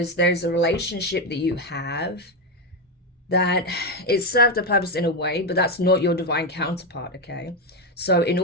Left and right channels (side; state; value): both; normal; correlation 0.09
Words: there's a relationship that you have that it served a purpose in a way, but that's not your divine counterpart, okay? So in